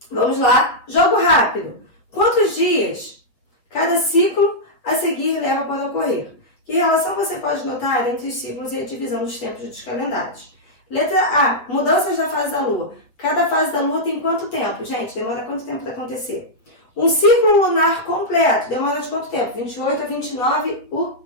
Vamos lá, jogo rápido. Quantos dias cada ciclo a seguir leva para ocorrer? Que relação você pode notar entre os ciclos e a divisão dos tempos dos calendários? Letra A, mudanças da fase da Lua. Cada fase da Lua tem quanto tempo? Gente, demora quanto tempo para acontecer? Um ciclo lunar completo demora de quanto tempo? 28 a 29, o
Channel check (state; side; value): late; right; 7.9 ms